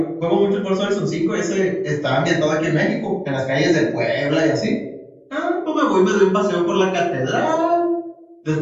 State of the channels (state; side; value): identical; both; correlation 1.00